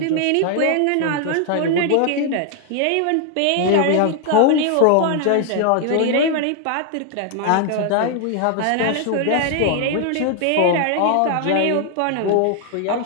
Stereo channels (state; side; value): different; both; correlation 0.00